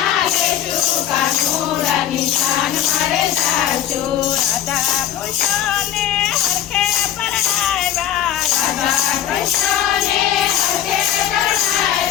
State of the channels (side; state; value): right; quieter; 11.1 dB